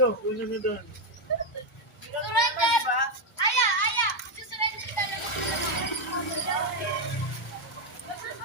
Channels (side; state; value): both; normal; correlation 0.05